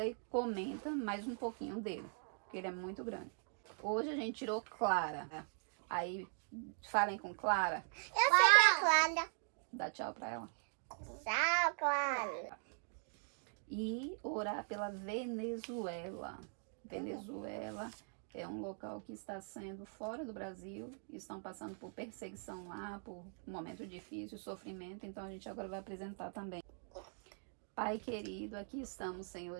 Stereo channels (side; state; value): left; silent; 50 dB below the other